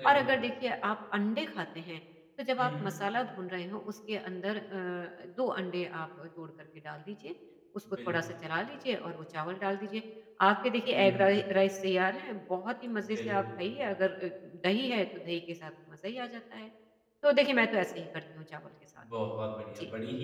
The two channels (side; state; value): both; identical; correlation 1.00